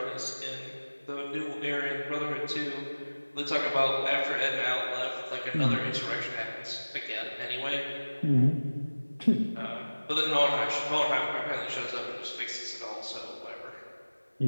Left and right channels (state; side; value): inverted; both; correlation -1.00